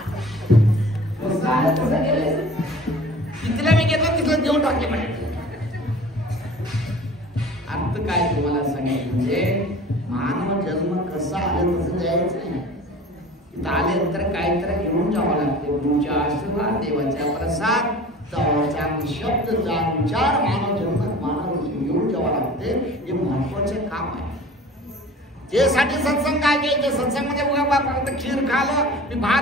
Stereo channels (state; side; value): normal; both; correlation 0.42